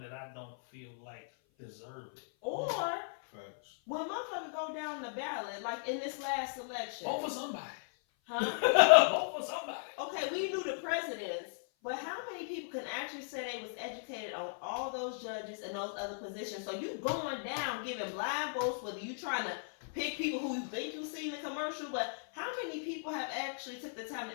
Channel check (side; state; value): right; silent; 53 dB below the other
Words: that I don't feel like deserve it? Or Facts. when motherfuckers go down the ballot, like in this last election. Vote for somebody. Huh? Vote for somebody. Okay, we knew the presidents, but how many people can actually say they was educated on all those judges and those other positions? So you going down giving blind votes, whether you trying to pick people who you think you see in the commercial, but how many people have actually took the time